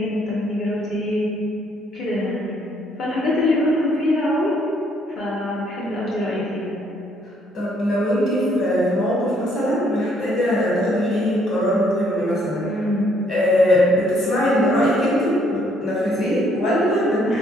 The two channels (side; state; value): both; normal; correlation 0.67